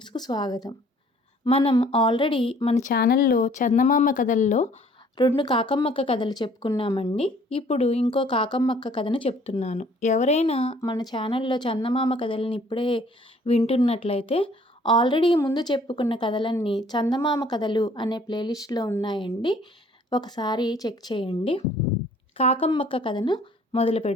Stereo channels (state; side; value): normal; both; correlation 0.57